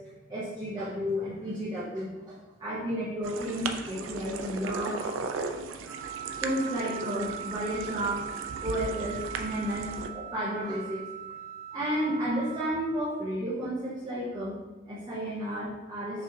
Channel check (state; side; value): normal; both; correlation 0.38